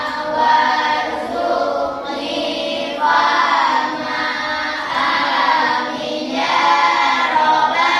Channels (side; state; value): both; identical; correlation 1.00